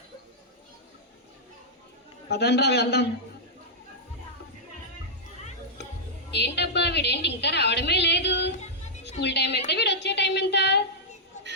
పదండ్రా వెళ్దాం. ఏంటబ్బా వీడేంటి ఇంకా రావడమే లేదు? స్కూల్ టైం ఎంత, వీడు వచ్చే టైం ఎంత?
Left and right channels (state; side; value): normal; both; correlation -0.09